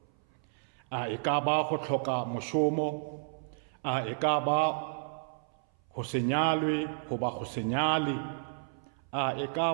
A e ka ba go tlhoka mošomo, a e ka ba go se nyalwe go ba go se nyale, a e ka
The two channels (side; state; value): left; silent; 56 dB below the other